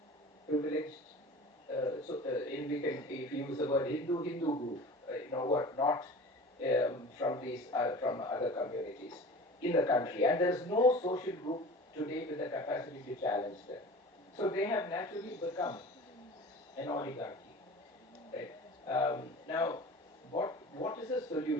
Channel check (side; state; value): both; normal; correlation 0.39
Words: privileged. We can, if you use the word Hindu group, who are not from other communities in the country, and there is no social group today with the capacity to challenge them. So they have naturally become an oligarchy. Right? Now, what is the